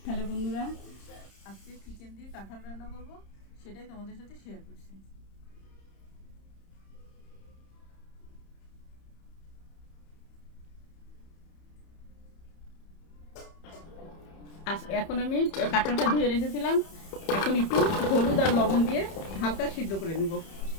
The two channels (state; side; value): late; right; 30 ms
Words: Hello বন্ধুরা, আজকে chicken দিয়ে কাঁঠাল রান্না করব, সেটাই তোমাদের সাথে শেয়ার করছি। এখন আমি কাঁঠালটা ধুয়ে রেখেছিলাম। এখন একটু হলুদ আর লবণ দিয়ে হালকা সিদ্ধ করে নেব,